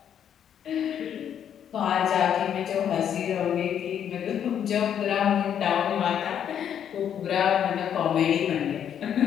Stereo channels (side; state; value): right; quieter; 9.1 dB